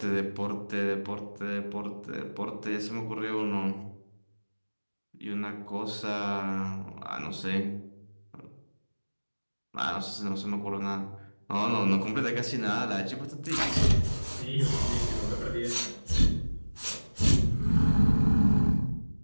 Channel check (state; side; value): inverted; both; correlation -1.00